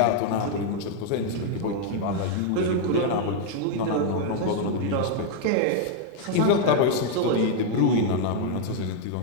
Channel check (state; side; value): different; both; correlation 0.00